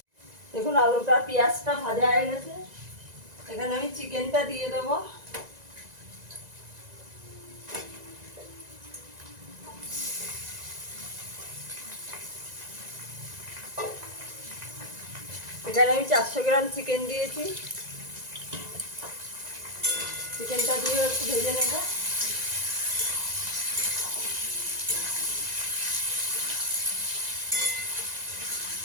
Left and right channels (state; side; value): late; left; 1.9 ms